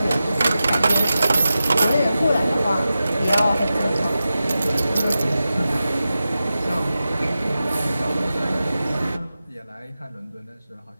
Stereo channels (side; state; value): both; inverted; correlation -0.93